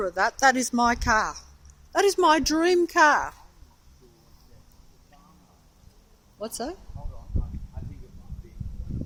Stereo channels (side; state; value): both; identical; correlation 1.00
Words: of that. That is my car. That is my dream car. What's that? I think it might